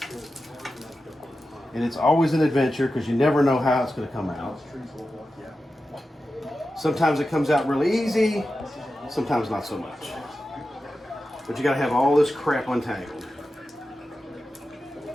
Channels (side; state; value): both; normal; correlation 0.92